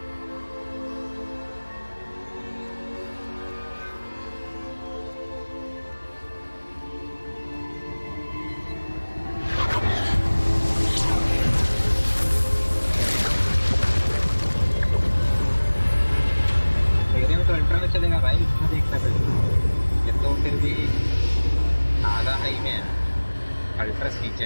मेरे में तो ultra में चलेगा भाई इसमें देखता फिर ये तो फिर भी आधा हाई में है अल्ट्रा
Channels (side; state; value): both; inverted; correlation -1.00